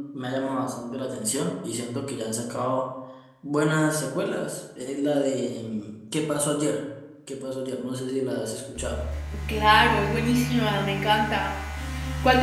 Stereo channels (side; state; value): both; identical; correlation 1.00